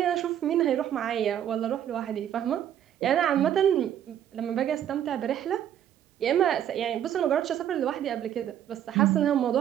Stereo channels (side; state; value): left; quieter; 10.3 dB